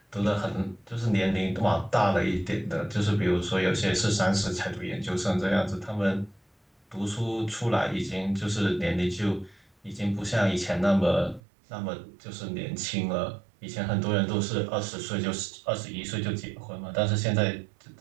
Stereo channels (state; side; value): drops out; left; at 11.4 s